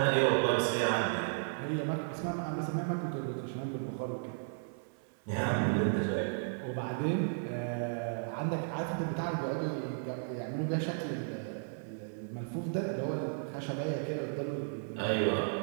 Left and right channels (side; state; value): left; silent; 55 dB below the other